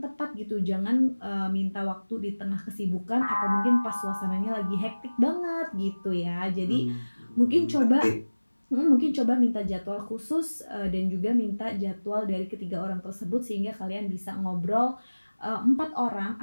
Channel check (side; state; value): both; inverted; correlation -1.00